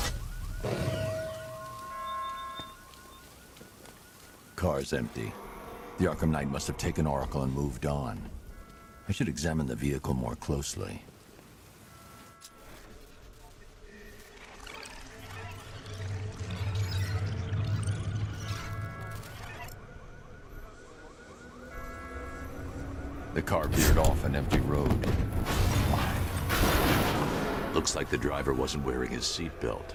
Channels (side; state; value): both; identical; correlation 1.00